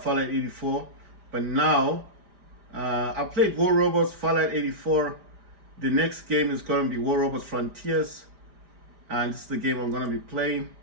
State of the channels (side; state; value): left; late; 4.9 ms